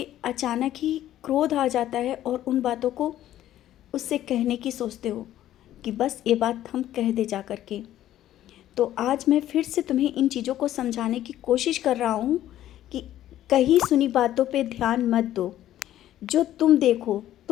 अचानक ही क्रोध आ जाता है और उन बातों को उससे कहने की सोचते हो कि बस ये बात हम कह दे जा कर के, तो आज मैं फिर से तुम्हें इन चीज़ों को समझाने की कोशिश कर रहा हूँ कि कहीं सुनी बातों पे ध्यान मत दो। जो तुम देखो,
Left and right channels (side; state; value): right; quieter; 12.8 dB